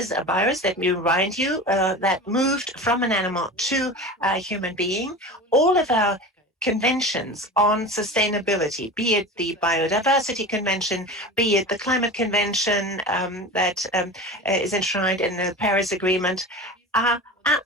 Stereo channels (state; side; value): normal; both; correlation 0.31